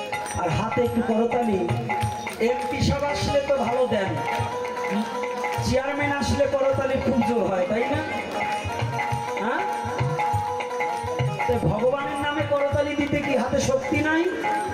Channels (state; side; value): identical; both; correlation 1.00